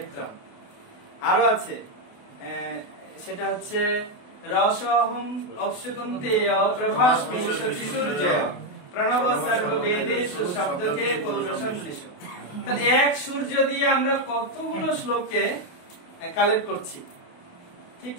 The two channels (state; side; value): late; right; 28 ms